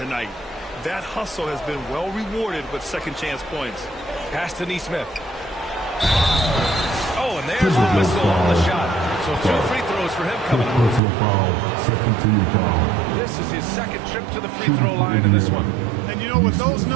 That hustle has been well rewarded with second-chance points. Pass to Neesmith. Oh, and there's the whistle on the shot. So 2 free throws for him coming up. This is his second trip to the free throw line in this one. And you know, with those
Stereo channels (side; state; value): left; drops out; at 11.0 s